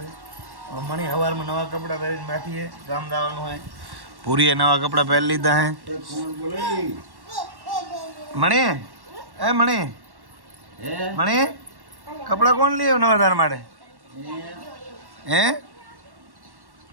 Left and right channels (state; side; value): late; left; 1.1 ms